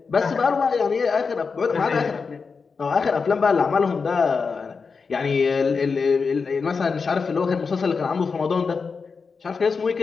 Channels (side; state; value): right; quieter; 5.0 dB